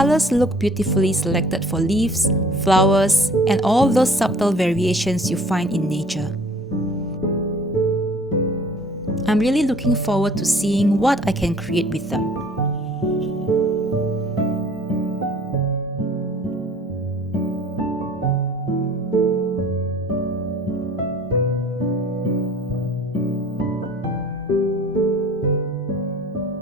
look beautifully selected for leaves, flowers, and all those subtle variations you find in nature. I'm really looking forward to seeing what I can create with them.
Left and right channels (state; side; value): normal; both; correlation 0.51